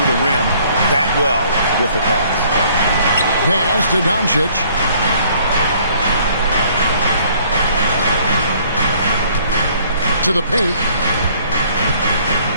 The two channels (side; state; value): both; inverted; correlation -0.59